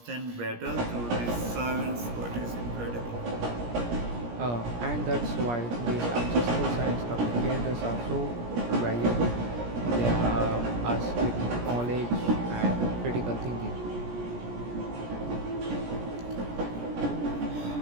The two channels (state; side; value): late; left; 17 ms